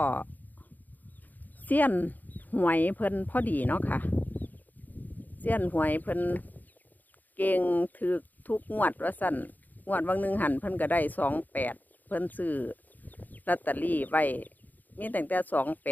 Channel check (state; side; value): late; right; 0.083 ms